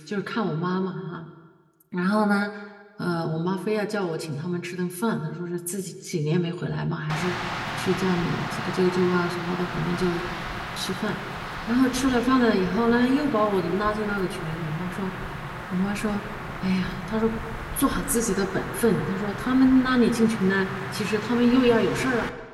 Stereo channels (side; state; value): both; identical; correlation 1.00